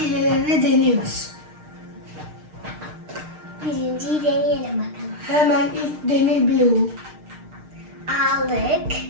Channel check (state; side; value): late; left; 6.5 ms